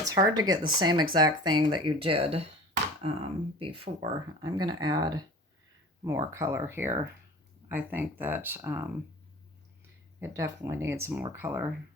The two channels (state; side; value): normal; both; correlation 0.39